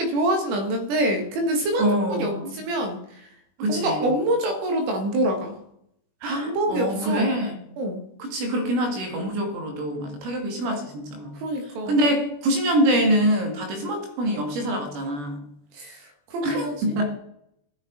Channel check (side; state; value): left; late; 20 ms